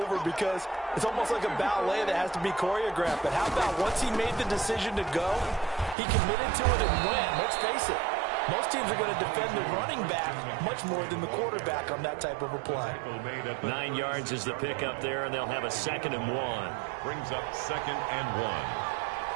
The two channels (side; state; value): left; drops out; at 6.0 s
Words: because it's almost like a ballet that has to be choreographed. But how about once he made the decision to go, he committed to it and went. Let's face it, Most teams are going to defend the running back much more than the quarterback on that type of a play. 9 yards is the pickup there, and they'll have a 2nd and 1. Brings up 2nd and 1.